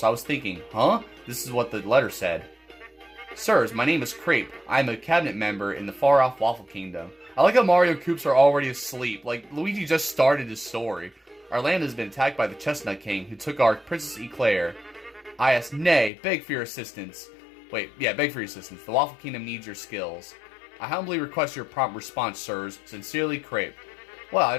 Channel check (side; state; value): right; drops out; at 16.1 s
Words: I was thinking, huh? This is what the letter said. Sirs, my name is Crepe. I am a cabinet member in the far-off Waffle Kingdom. I like how Mario Koops are already asleep. Luigi just started his story. Our land has been attacked by the Chestnut King, who took our Princess Eclair. I asked, nay, beg for your assistance. Beg for your assistance. The Waffle Kingdom needs your skills. I humbly request your prompt response, sirs. Sincerely, Crepe. Well, I